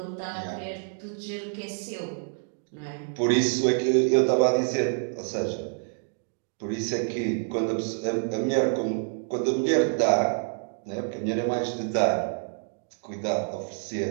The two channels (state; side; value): silent; left; 58 dB below the other